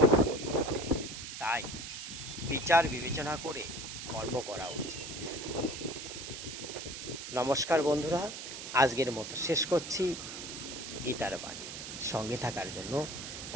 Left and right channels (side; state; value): right; noise; hiss, 8 dB below the sound